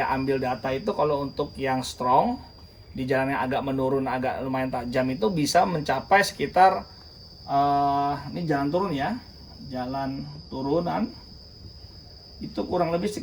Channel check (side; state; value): both; identical; correlation 1.00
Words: ambil data itu kalau untuk yang strong di jalan yang agak menurun, agak lumayan tajam itu bisa mencapai sekitar ini jalan turun ya, jalan turunan itu kurang lebih